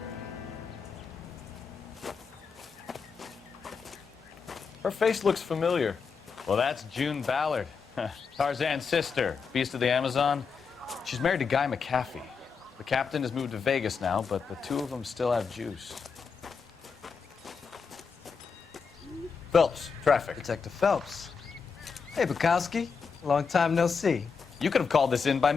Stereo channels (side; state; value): right; quieter; 5.6 dB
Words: Her face looks familiar. Well, that's June Ballard, Tarzan's sister, Beast of the Amazon. She's married to Guy McCaffey. The captain has moved to Vegas now, but the two of them still have juice. Phelps, traffic. Detective Phelps. Hey, Bukowski. Long time no see. You could have called this in by